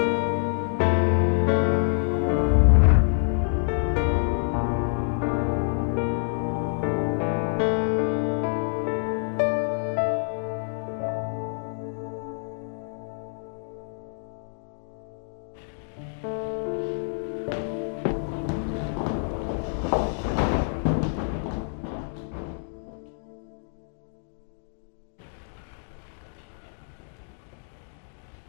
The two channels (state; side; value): silent; right; digital silence